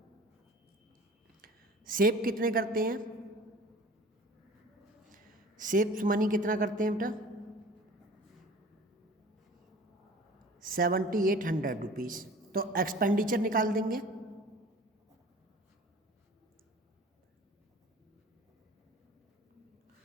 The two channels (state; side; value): normal; both; correlation 0.44